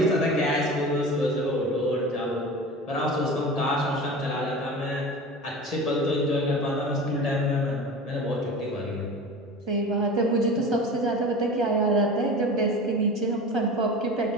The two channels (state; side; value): normal; both; correlation 0.34